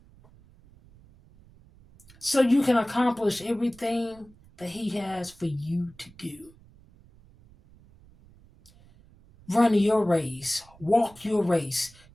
So you can accomplish everything that he has for you to do. Run your race. Walk your race.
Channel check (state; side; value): noise; right; rumble, 26 dB below the sound